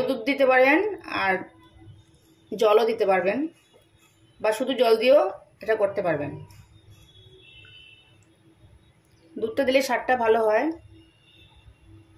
দুধ দিতে পারেন, আর জলও দিতে পারবেন, বা শুধু জল দিয়েও এটা করতে পারবেন। দুধটা দিলে স্বাদটা ভালো হয়।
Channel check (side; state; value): both; identical; correlation 1.00